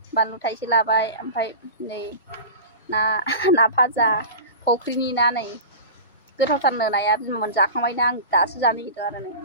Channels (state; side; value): inverted; both; correlation -0.31